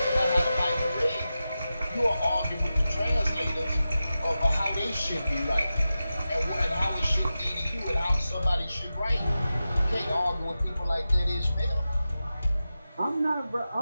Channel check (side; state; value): both; inverted; correlation -0.93